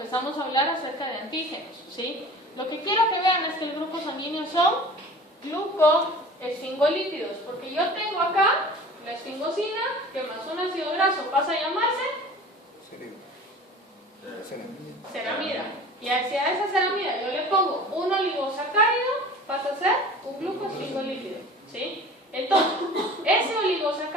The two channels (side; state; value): both; normal; correlation 0.41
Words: a hablar acerca de antígenos, ¿sí? Lo que quiero que vean es que el grupo sanguíneo son glucoesfingolípidos, porque yo tengo acá la esfingosina, que más un ácido graso pasa a llamarse ceramida. Y hacia esa ceramida yo le pongo un oligosacárido, pasa a ser un glucosfingolípido, ¿sí? Entonces, ese